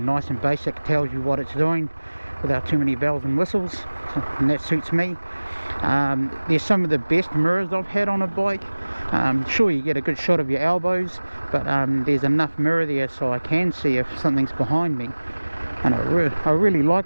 and basic. Tells you what it's doing without too many bells and whistles, and that suits me. There's some of the best mirrors I've had on a bike. Sure, you get a good shot of your elbows, but there's enough mirror there so I can see if something's behind me, and I really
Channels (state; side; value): inverted; both; correlation -1.00